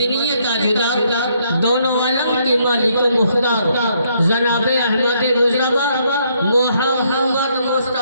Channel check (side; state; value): both; inverted; correlation -0.71